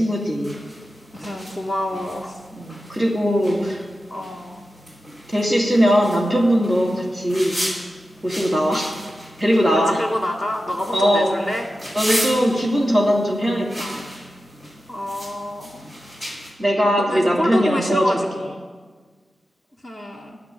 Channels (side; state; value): both; normal; correlation 0.92